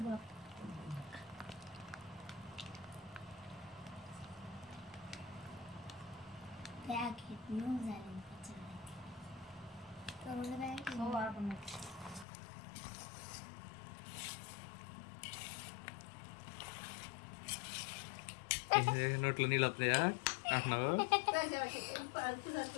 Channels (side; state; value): right; drops out; at 12.2 s